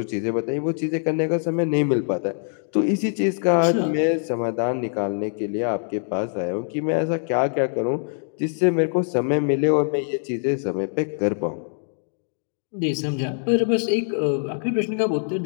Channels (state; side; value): silent; right; digital silence